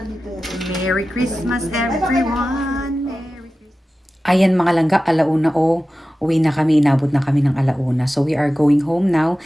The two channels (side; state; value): both; normal; correlation 0.94